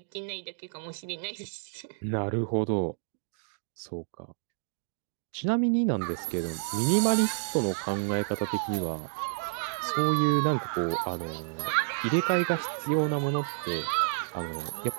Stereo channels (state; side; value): silent; left; digital silence